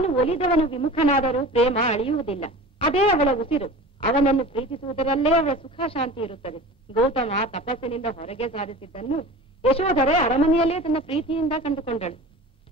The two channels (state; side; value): normal; both; correlation 0.37